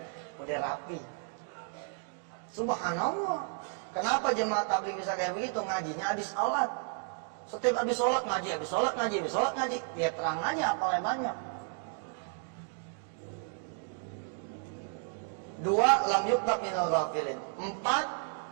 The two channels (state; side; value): silent; left; 56 dB below the other